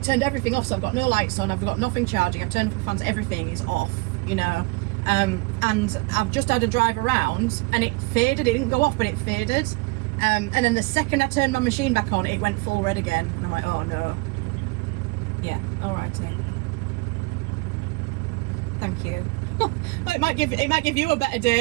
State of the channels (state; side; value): quieter; left; 26.1 dB